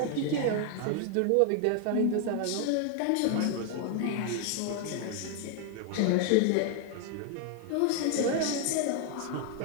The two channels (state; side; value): different; both; correlation 0.00